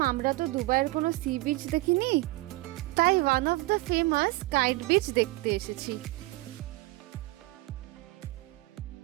আমরা তো দুবাইয়ের কোনো সি বিচ দেখিনি, তাই one of the famous kite beach দেখতে এসেছি।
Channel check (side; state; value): left; quieter; 21.0 dB